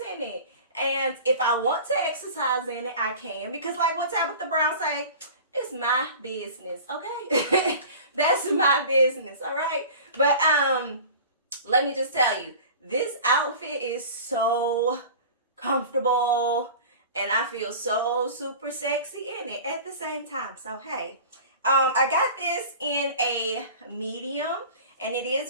in it. And if I want to exercise in it, I can. Because like what Tabitha Brown say, it's my business, okay? That's my business, all right? But let me just tell you, this outfit is so comfortable and I feel so super sexy in it at the same time. So, hey, I got this in a medium and it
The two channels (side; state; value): both; inverted; correlation -0.39